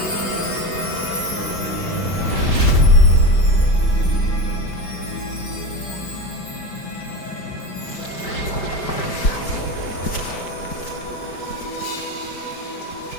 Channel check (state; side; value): late; right; 5.1 ms